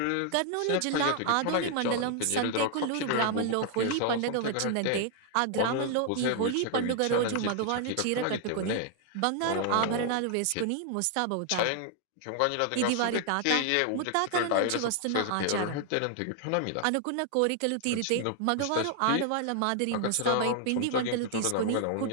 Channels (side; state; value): both; different; correlation 0.00